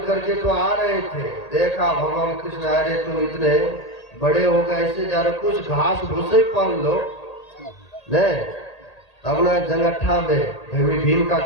करके तो आ रहे थे, देखा भगवान कृष्ण, अरे तुम इतने बड़े हो गए, ऐसे जा रहे, कुछ घास भूसे पहन लो। नहीं, अपना जंगट्ठा में भीम का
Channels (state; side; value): late; right; 1.8 ms